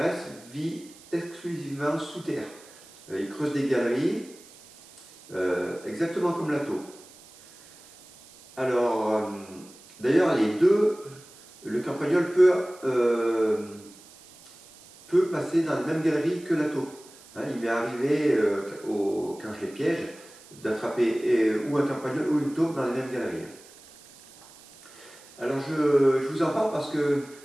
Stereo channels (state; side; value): noise; right; hiss, 23 dB below the sound